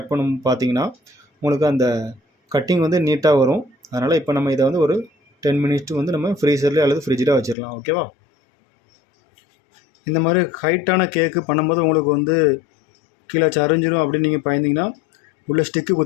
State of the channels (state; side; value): drops out; right; at 7.6 s